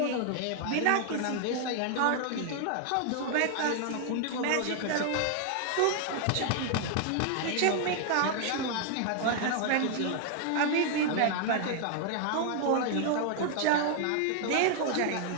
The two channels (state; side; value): different; both; correlation 0.00